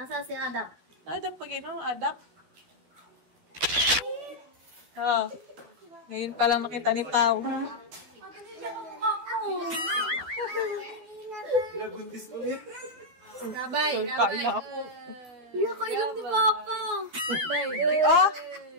si Adap? Adap pag Adap? Oh. Ngayon pa lang makita ni Pau. Pinabuntis ulit. Gabay. Kain na ako. Kailan ni Papa? Oh!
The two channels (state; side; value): late; left; 12 ms